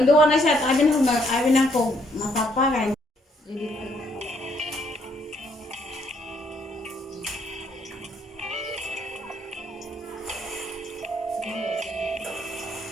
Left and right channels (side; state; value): both; normal; correlation 0.70